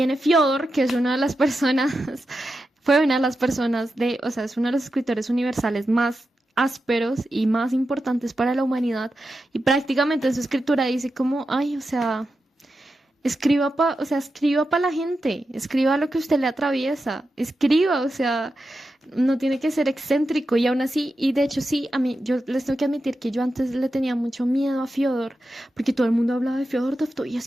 Fyodor, que es una de las personas, fue una de las personas o sea, es uno de los escritores universales más ásperos y más importantes para la humanidad. Y prácticamente en su escritura dice como, ay, o sea, escriba para la gente, escriba lo que usted le atraviesa, escriba, o sea, no tiene que ser excéntrico y aún así, y de hecho sí, a mí, yo les tengo que admitir que yo antes le tenía mucho miedo a Fyodor, porque todo el mundo hablaba de Fyodor Dostoyevski, y es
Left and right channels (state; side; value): normal; both; correlation 0.89